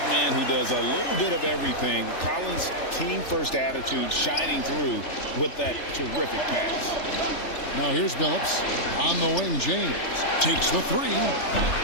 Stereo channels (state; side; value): late; right; 3.4 ms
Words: man who does a little bit of everything. Collins' team-first attitude shining through with that terrific pass. Now here's Billups. On the wing, James takes the 3.